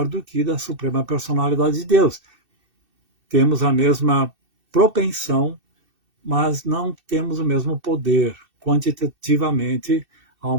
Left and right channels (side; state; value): left; late; 2.6 ms